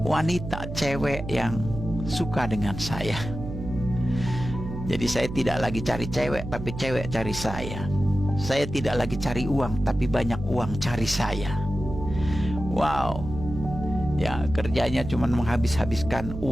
wanita, cewek yang suka dengan saya. Jadi saya tidak lagi cari cewek, tapi cewek cari saya. Saya tidak lagi cari uang, tapi banyak uang cari saya. Wow. Ya, kerjanya cuma menghabis-habiskan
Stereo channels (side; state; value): right; noise; hum, 8 dB below the sound